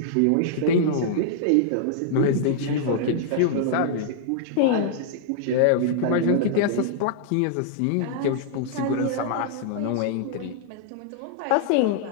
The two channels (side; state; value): both; different; correlation -0.01